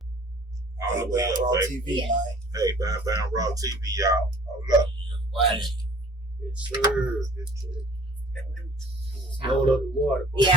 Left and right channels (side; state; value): both; normal; correlation 0.51